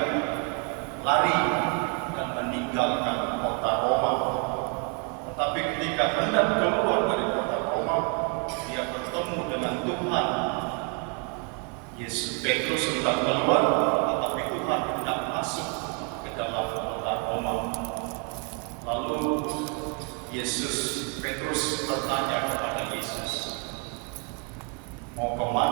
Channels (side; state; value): left; quieter; 32.7 dB